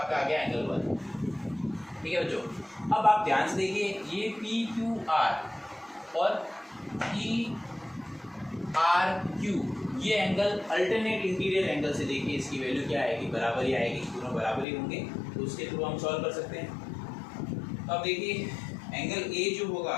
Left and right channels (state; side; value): drops out; right; at 14.7 s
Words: आ गया एंगल 1। ठीक है बच्चों, अब आप ध्यान से देखिए, ये PQR और PRQ ये एंगल अल्टरनेट इंटीरियर एंगल से देखिए, इसकी वैल्यू क्या आएगी, बराबर ही आएगी, दोनों बराबर ही होंगे, तो उसके थ्रू हम सॉल्व कर सकते हैं। अब देखिए एंगल A जो होगा